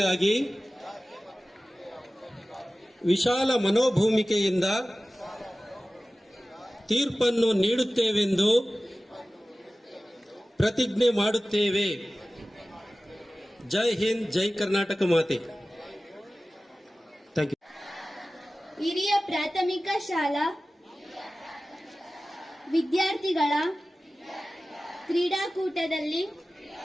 ವಿಶಾಲ ಮನೋಭೂಮಿಕೆಯಿಂದ ತೀರ್ಪನ್ನು ನೀಡುತ್ತೇವೆಂದು ಪ್ರತಿಜ್ಞೆ ಮಾಡುತ್ತೇವೆ. ಜೈ ಹಿಂದ್, ಜೈ ಕರ್ನಾಟಕ ಮಾತೆ. Thank you. ಹಿರಿಯ ಪ್ರಾಥಮಿಕ ಶಾಲಾ ವಿದ್ಯಾರ್ಥಿಗಳ ಕ್ರೀಡಾಕೂಟದಲ್ಲಿ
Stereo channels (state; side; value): normal; both; correlation 0.96